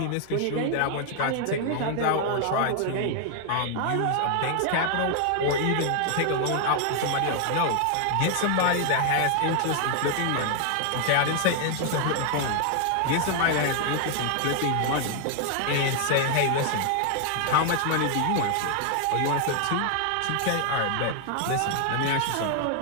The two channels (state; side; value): different; both; correlation 0.00